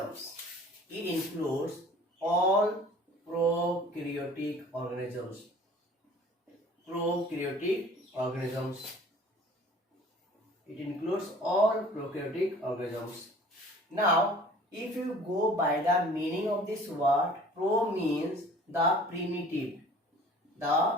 It includes all prokaryotic organisms. Prokaryotic organisms. It includes all prokaryotic organisms. Now, if you go by the meaning of this word, pro means the primitive.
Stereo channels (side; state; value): both; normal; correlation 0.48